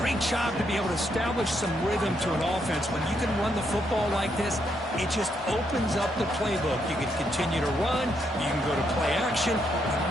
job to be able to establish some rhythm to an offense. When you can run the football like this, it just opens up the playbook. You can continue to run, you can go to play action, and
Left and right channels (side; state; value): both; normal; correlation 0.77